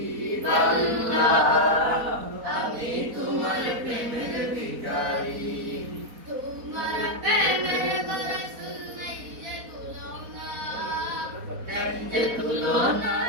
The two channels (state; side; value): late; left; 4.1 ms